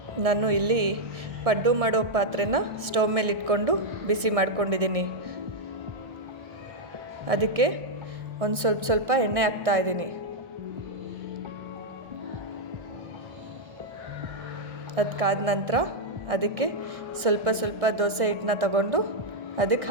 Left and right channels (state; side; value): late; left; 1.3 ms